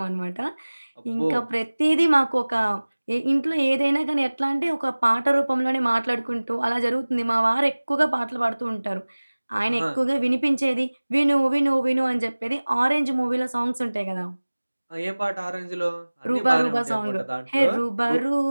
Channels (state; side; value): inverted; both; correlation -1.00